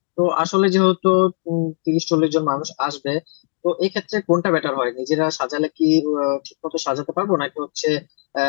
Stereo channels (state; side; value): silent; right; 56 dB below the other